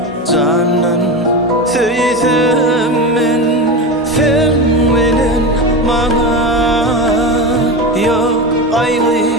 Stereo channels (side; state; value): both; normal; correlation 0.22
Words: Canan söýsem men Sen bilen maňa Ýok